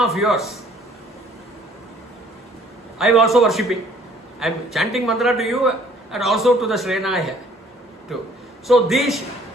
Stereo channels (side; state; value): both; normal; correlation 0.58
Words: of yours, I am also worshipping. I am chanting mantra to you and also to the Srenaya too. So this